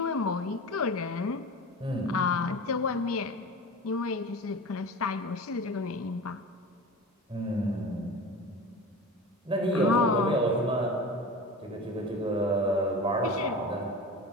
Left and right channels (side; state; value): both; normal; correlation 0.32